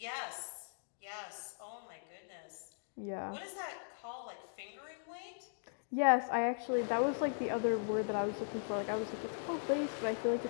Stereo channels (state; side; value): silent; right; digital silence